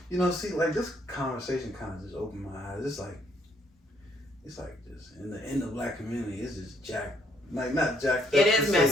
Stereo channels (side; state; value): both; normal; correlation 0.69